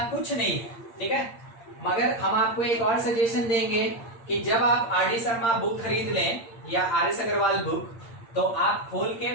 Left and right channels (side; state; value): right; late; 8.7 ms